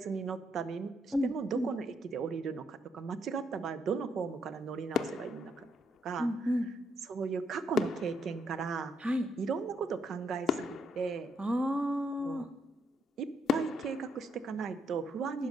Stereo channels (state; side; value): normal; both; correlation 0.74